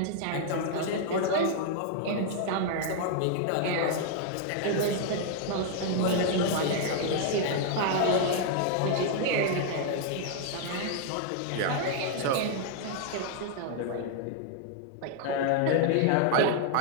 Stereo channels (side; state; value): both; different; correlation 0.00